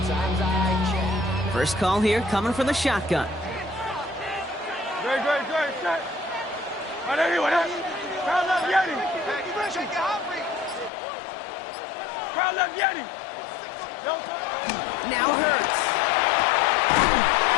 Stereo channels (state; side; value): drops out; right; at 10.9 s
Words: I can't. First call here coming from the shotgun. Great, set. Right there, what up? Crowd left Yeti. Crowd left Yeti. Now Hurts.